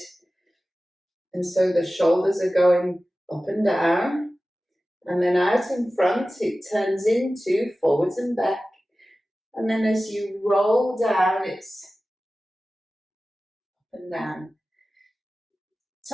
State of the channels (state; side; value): normal; both; correlation 0.96